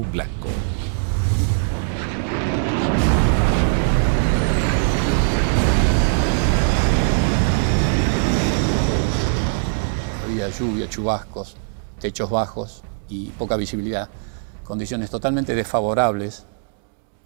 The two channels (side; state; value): left; silent; digital silence